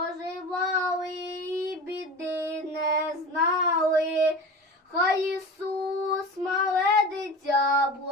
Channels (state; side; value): normal; both; correlation 0.33